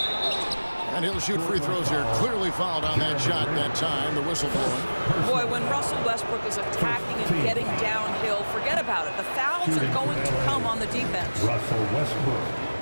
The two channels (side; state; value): both; inverted; correlation -1.00